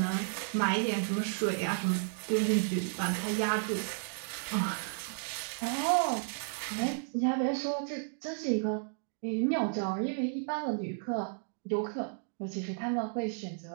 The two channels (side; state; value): left; silent; digital silence